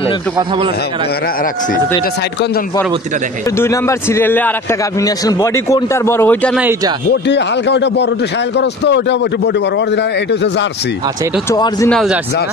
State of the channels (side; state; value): both; normal; correlation 0.38